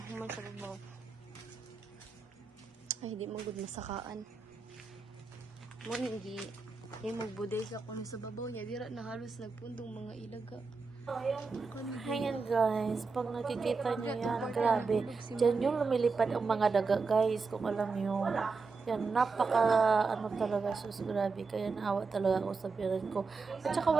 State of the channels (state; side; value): quieter; left; 4.5 dB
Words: sa babaw. Ay di mo gud masakaan mo gi magbuday sa kuno sa babaw nya dira na halos nagpundong mga ilaga. Ayan guys, pag nakikita nyo yan, grabe dyan yung lumilipad ang mga daga guys, kung alam nyo yan, talaga, sus, grabe. Kaya naawa talaga ako sa biyanan ko. At saka